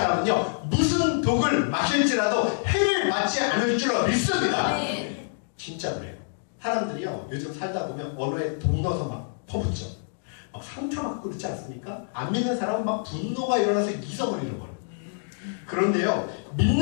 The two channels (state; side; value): silent; right; digital silence